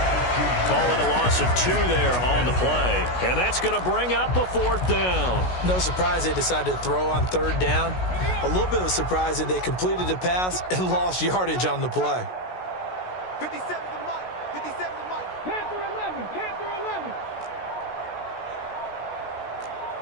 Calling a loss of 2 there on the play. And that's going to bring up a 4th down. No surprise they decided to throw on 3rd down. A little bit of a surprise that they completed the pass and lost yardage on the play. 57 to Mike. 57 to Mike. Panther 11. Panther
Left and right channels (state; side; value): late; right; 16 ms